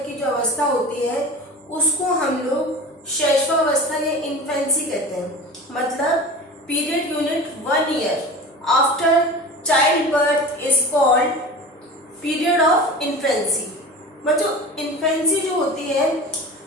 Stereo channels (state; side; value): normal; both; correlation 0.34